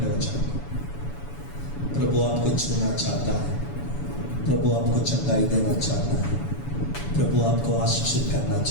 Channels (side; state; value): right; late; 7.1 ms